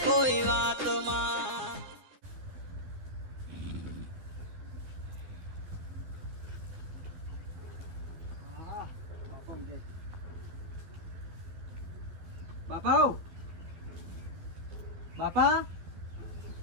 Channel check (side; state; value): left; late; 12 ms